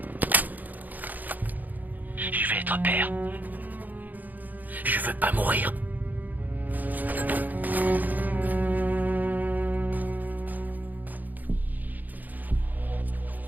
Je vais être père. Je veux pas mourir.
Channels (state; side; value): late; left; 0.083 ms